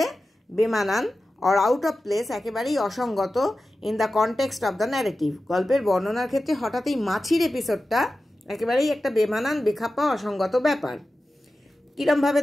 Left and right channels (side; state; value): both; normal; correlation 0.94